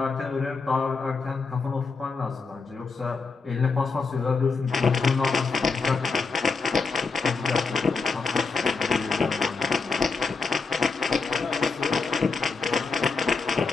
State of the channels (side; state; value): right; quieter; 4.6 dB